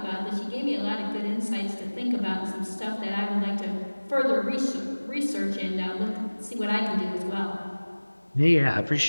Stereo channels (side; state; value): both; inverted; correlation -1.00